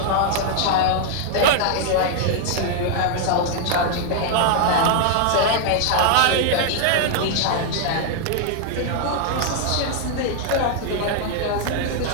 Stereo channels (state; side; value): different; both; correlation 0.00